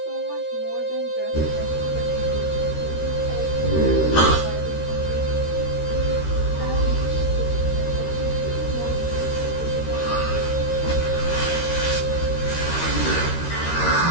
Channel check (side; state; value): right; late; 13 ms